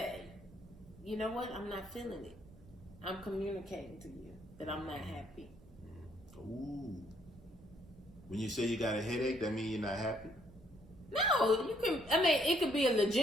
you know what, I'm not feeling it. I'm communicating to you that I'm not happy. Ooh. When you say you got a headache, that means you're not happy? No, you can. I mean, it could be a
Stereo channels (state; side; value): noise; right; rumble, 21 dB below the sound